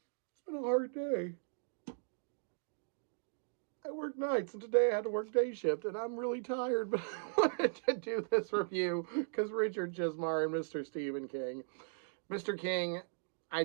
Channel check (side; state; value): left; silent; digital silence